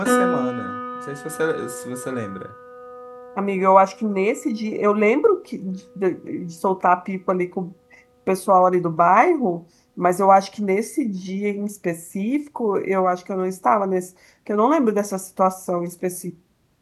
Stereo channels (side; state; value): both; identical; correlation 1.00